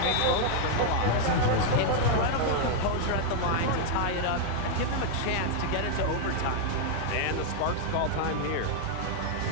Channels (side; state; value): both; different; correlation 0.00